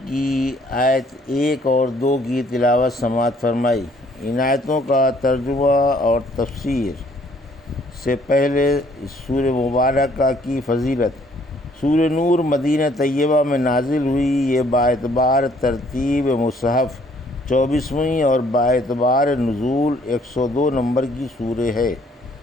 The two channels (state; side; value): normal; both; correlation 0.62